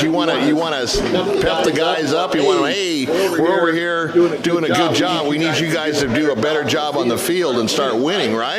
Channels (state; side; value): identical; both; correlation 1.00